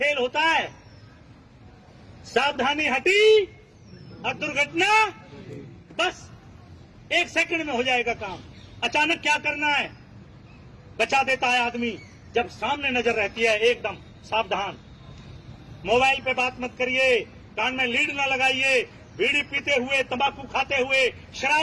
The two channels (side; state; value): both; identical; correlation 1.00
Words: होता है। सावधानी हटी और दुर्घटना बस 1 सेकंड में हो जाएगा काम। अचानक क्या करना है, बचा देता है आदमी। जब सामने नजर रहती है, एकदम सावधान। मोबाइल पे बात मत करिए, कान में लीड ना लगाइए, बीड़ी पीते हुए, तंबाकू खाते हुए,